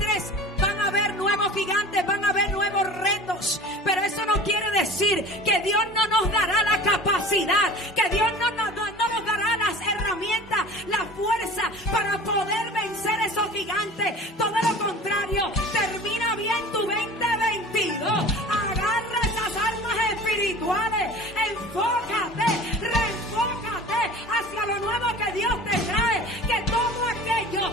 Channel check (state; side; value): normal; both; correlation 0.40